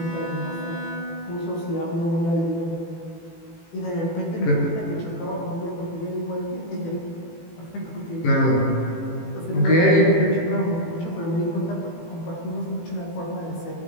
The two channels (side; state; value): right; late; 18 ms